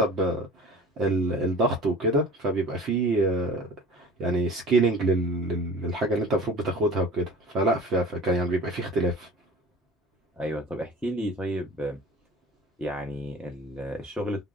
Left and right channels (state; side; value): normal; both; correlation 0.41